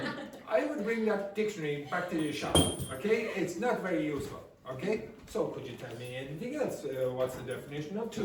I would bring that dictionary back to your shop, okay? It's not very useful, okay? So could you tell me anything else? What's the definition of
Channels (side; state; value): both; identical; correlation 1.00